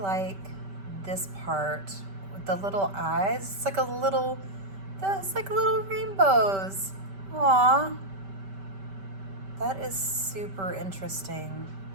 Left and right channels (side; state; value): left; late; 5.2 ms